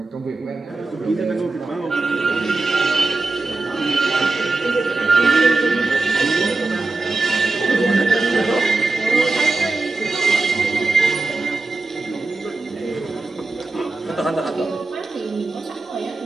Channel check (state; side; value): quieter; left; 3.4 dB